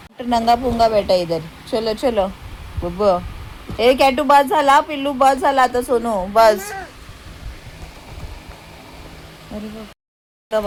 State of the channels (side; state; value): both; identical; correlation 1.00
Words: नंगा पुंगा बेटा इधर. चलो चलो बुब्बो. ए कॅटू बस झाला. पिल्लू बस झाला आता. सोनू बस. अरे बाबा